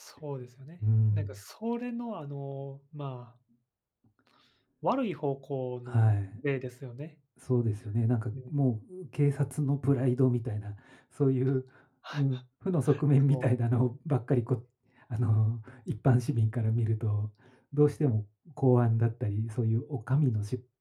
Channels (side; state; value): both; identical; correlation 1.00